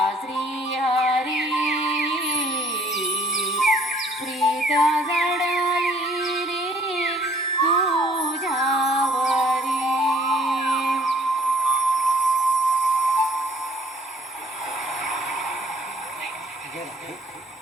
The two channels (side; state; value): both; normal; correlation 0.59